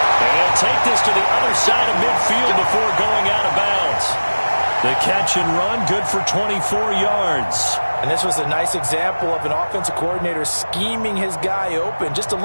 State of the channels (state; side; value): inverted; both; correlation -1.00